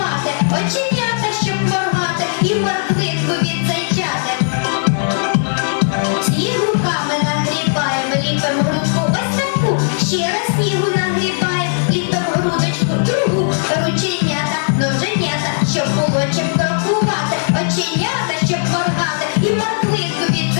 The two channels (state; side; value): silent; right; digital silence